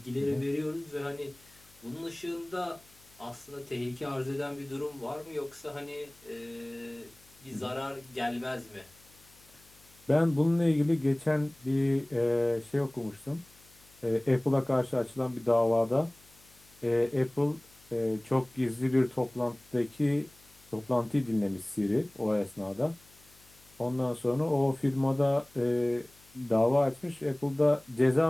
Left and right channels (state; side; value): noise; left; hum, 28 dB below the sound